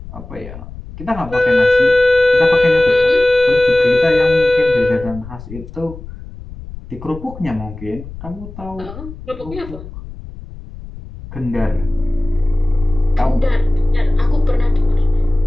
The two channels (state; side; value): noise; left; rumble, 14 dB below the sound